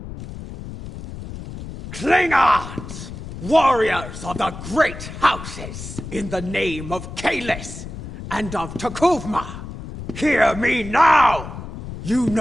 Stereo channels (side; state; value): left; noise; rumble, 11 dB below the sound